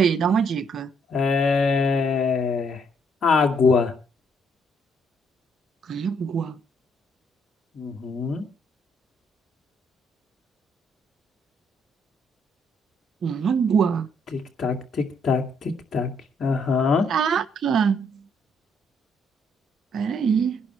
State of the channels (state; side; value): normal; both; correlation 0.70